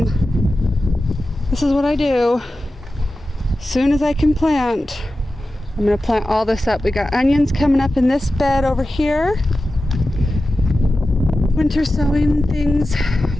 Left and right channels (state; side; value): normal; both; correlation 0.94